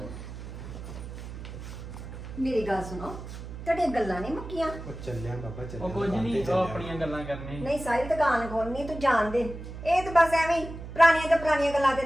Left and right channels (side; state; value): right; noise; hum, 11 dB below the sound